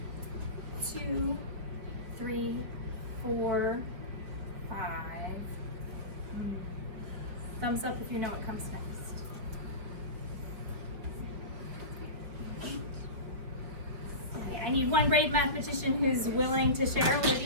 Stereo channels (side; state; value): left; late; 4.9 ms